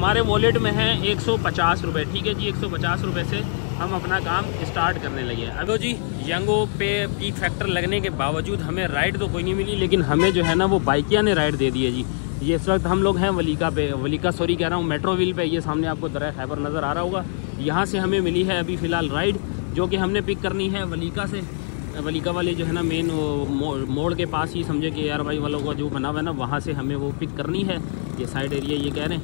वॉलेट में है 150 रुपये, ठीक है जी। 150 रुपये से हम अपना काम स्टार्ट करने लगे हैं। अब जी यंगो पे पीक फैक्टर लगने के बावजूद हमें राइड तो कोई नहीं मिली, लेकिन हमें जो है ना वो बाइकिया ने राइड दे दी है जी। ये इस वक्त हम लोग हैं वलीका कह रहा हूँ, मेट्रो व्हील पे। ये सामने आपको दरिया खैबर नज़र आ रहा होगा। यहाँ से हमें मिली है अभी फ़िलहाल राइड, जो कि हमने पिक करनी है वलीका से। वलीका वाले जो है ना मेन मोड़ के पास ही समझे कि यार भाई वालों का जो बना हुआ है ना वहाँ से हमें वो पिक करनी है। ये साइड एरिया ये कह रहे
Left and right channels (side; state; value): right; silent; digital silence